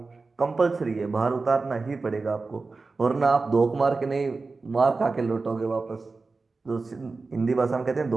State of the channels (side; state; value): left; quieter; 3.9 dB